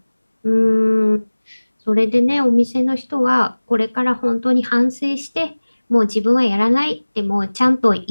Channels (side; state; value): both; inverted; correlation -1.00